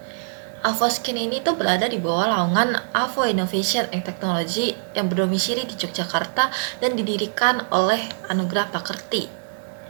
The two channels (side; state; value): left; silent; digital silence